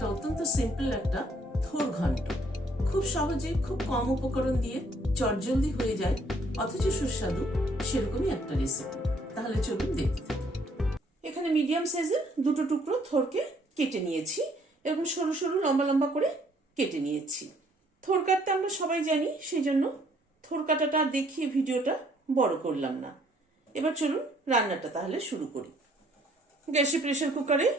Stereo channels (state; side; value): normal; both; correlation 0.64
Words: অত্যন্ত সিম্পল একটা থোর ঘন্ট। খুব সহজে খুব কম উপকরণ দিয়ে চটজলদি হয়ে যায় অথচ সুস্বাদু সেরকমই একটা রেসিপি। তাহলে চলুন দেখতে থাকি। এখানে মিডিয়াম সাইজের দুটো টুকরো থোরকে কেটে নিয়েছি, এরকম সরু সরু লম্বা লম্বা করে কেটে নিয়েছি। থোর কাটতে আমরা সবাই জানি, সেই জন্য থোর কাটাটা দেখিয়ে ভিডিওটা বড় করলাম না। এবার চলুন রান্নাটা তাহলে শুরু করি। গ্যাসে প্রেসার কুকারে